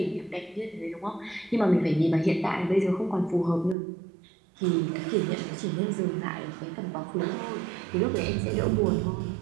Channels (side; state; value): left; drops out; at 3.8 s